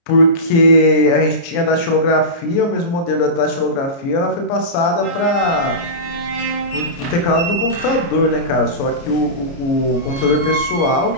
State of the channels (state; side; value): late; right; 29 ms